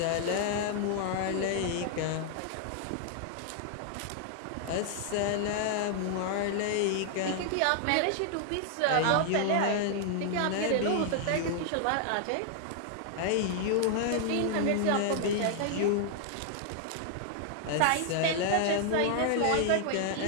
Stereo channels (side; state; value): both; different; correlation -0.01